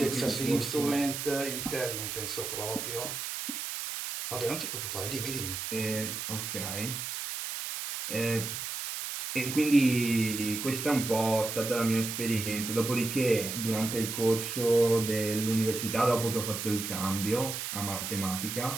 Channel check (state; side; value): noise; right; hiss, 5 dB below the sound